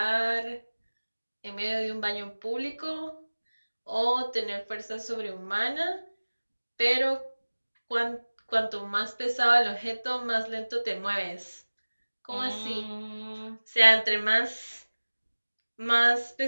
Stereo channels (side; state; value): both; inverted; correlation -1.00